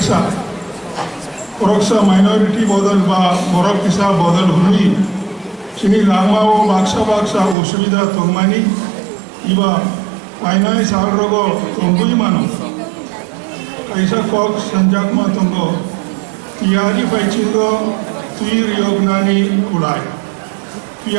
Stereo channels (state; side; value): drops out; left; at 7.6 s